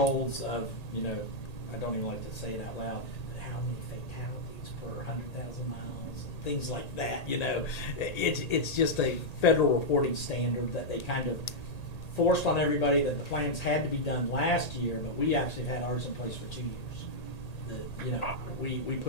of, you know, I don't even like to say it out loud, but how many fatalities per 100,000 miles, and things like that, you know. It's just a federal reporting standard that they kind of forced on everybody, that the plans had to be done last year, but we actually had ours in place for 2 years. You know, we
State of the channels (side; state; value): right; late; 1.8 ms